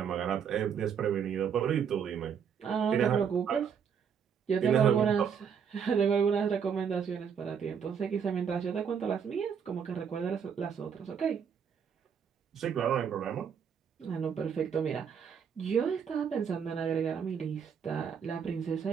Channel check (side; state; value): left; quieter; 7.2 dB